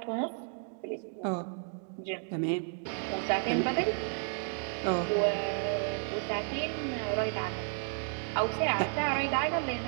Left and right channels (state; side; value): silent; left; 56 dB below the other